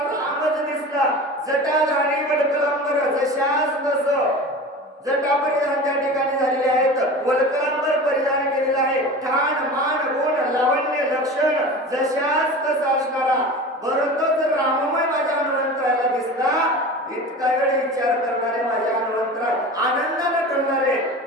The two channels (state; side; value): normal; both; correlation 0.34